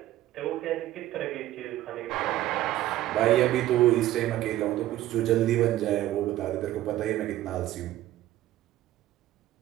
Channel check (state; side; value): quieter; left; 14.4 dB